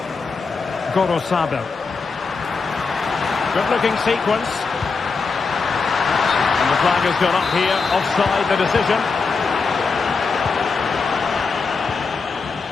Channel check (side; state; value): right; quieter; 4.7 dB